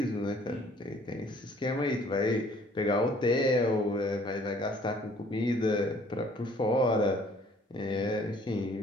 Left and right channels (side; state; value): both; normal; correlation 0.58